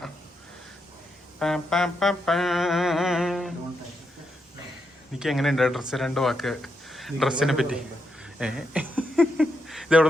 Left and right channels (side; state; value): both; normal; correlation 0.82